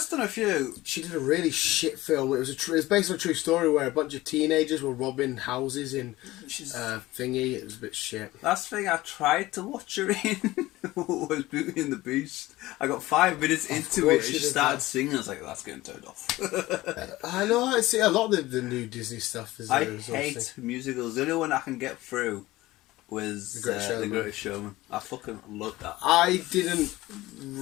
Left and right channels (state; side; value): quieter; right; 18.0 dB